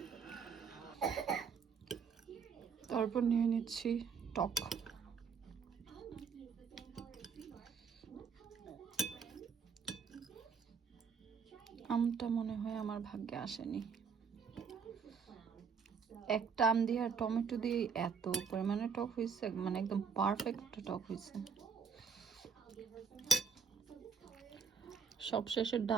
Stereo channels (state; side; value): quieter; left; 6.1 dB